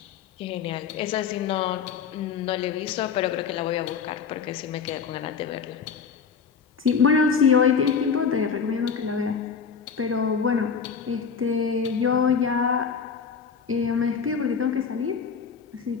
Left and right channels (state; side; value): quieter; right; 6.2 dB